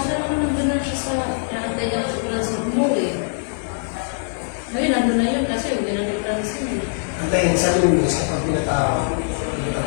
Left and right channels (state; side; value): silent; right; digital silence